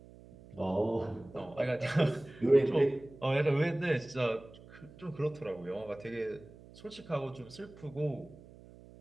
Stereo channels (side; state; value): right; noise; hum, 20 dB below the sound